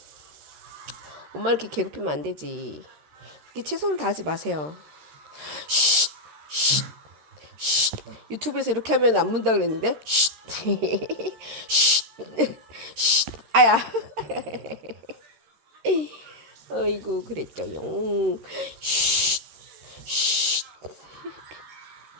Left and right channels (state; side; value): late; left; 13 ms